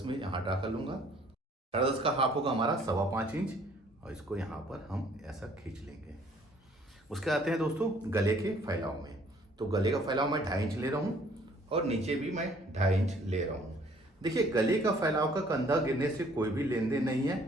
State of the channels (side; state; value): both; normal; correlation 0.59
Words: में यहाँ ड्रा कर लूंगा। 10.5 का हाफ होगा हमारा 5.25 इंच, और इसको यहाँ पर हम ऐसा खींच लेंगे। उसके आते हैं दोस्तों गले के फैलाव में। तो गले का फैलाव मैं 2.5 इंच ले रहा हूँ, और नीचे भी मैं 2.5 इंच ले रहा हूँ। देखिए गले का फैलाव का कंधा गिरने से कोई भी लेन देन नहीं है।